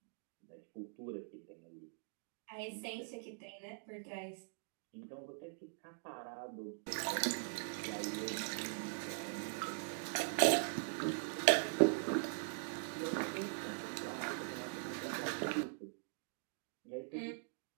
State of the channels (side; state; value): left; silent; digital silence